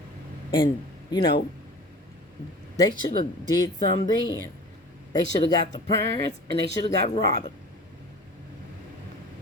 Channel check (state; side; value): normal; both; correlation 0.40